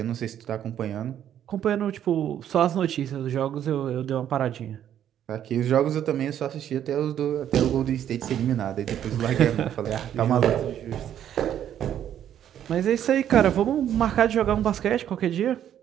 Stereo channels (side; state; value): left; quieter; 10.3 dB